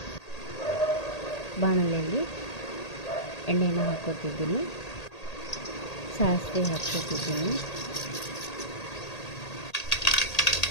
ಬಾಣಲೆಯಲ್ಲಿ ಎಣ್ಣೆನ ಹಾಕೋತಿದ್ದೀನಿ, ಸಾಸಿವೆ ಹಾಕ್ಕೋತಿದ್ದೀನಿ,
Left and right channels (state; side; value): late; right; 1.8 ms